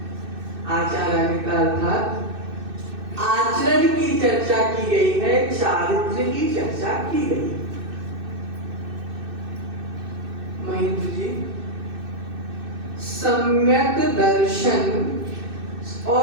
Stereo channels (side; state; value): left; late; 2.6 ms